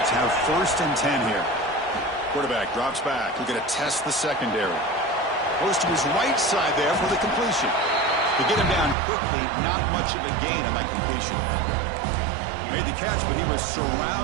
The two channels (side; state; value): left; drops out; at 9.0 s